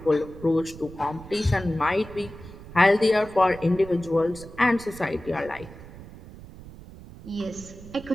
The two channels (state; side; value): noise; right; rumble, 17 dB below the sound